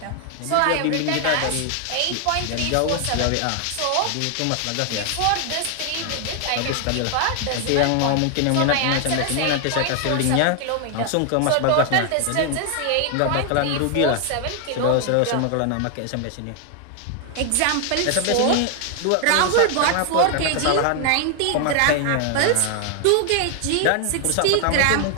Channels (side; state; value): both; different; correlation 0.00